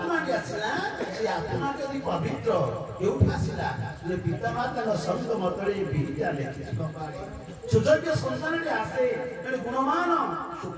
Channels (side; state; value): both; identical; correlation 1.00